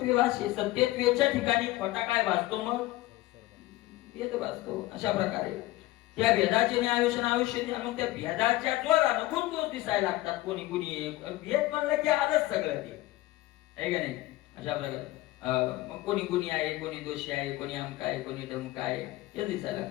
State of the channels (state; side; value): quieter; right; 17.6 dB